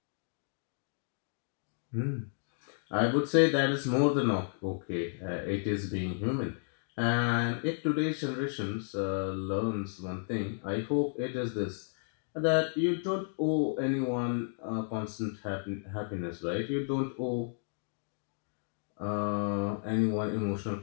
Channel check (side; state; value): right; silent; digital silence